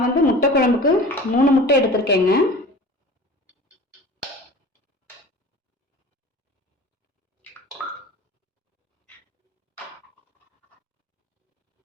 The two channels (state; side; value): normal; both; correlation 0.39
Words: வந்து முட்டை குழம்புக்கு 3 முட்டை எடுத்திருக்கேங்க.